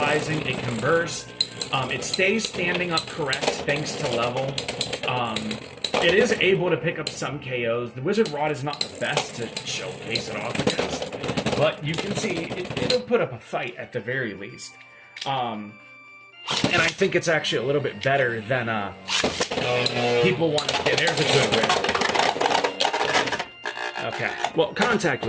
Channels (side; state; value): both; identical; correlation 1.00